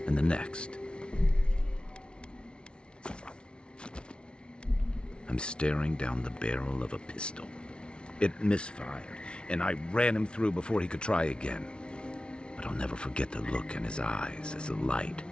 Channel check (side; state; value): right; late; 0.057 ms